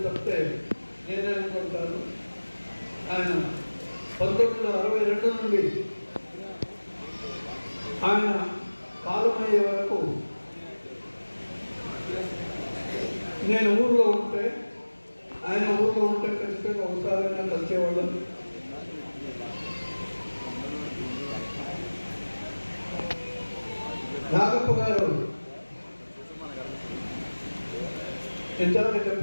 తప్పితే నేనే అనుకుంటాను. ఆయన 1962 నుండి ఆయన కాలమయ్యే వరకు నేను ఊళ్ళో ఉంటే, ఆయన ఊళ్ళో ఉంటే ఖచ్చితంగా ఒకసారైనా కలిసేవాళ్ళం. నాగప్ప గారు ఇంతవరకు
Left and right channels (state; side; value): inverted; both; correlation -1.00